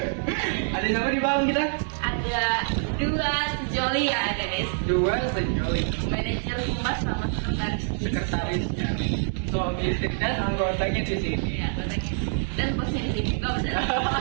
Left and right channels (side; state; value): left; silent; digital silence